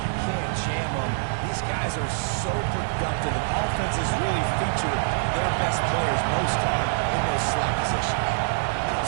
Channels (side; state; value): left; silent; digital silence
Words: can't jam them. These guys are so productive, and offenses really feature their best players most time in those slot positions.